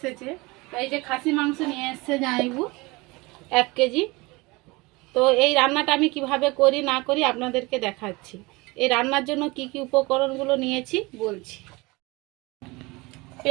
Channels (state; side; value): quieter; left; 23.9 dB